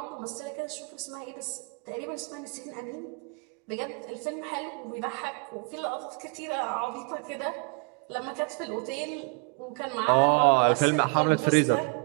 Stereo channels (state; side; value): quieter; left; 35.2 dB